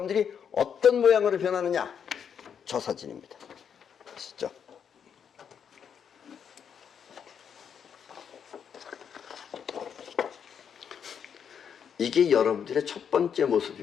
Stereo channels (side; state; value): right; quieter; 7.6 dB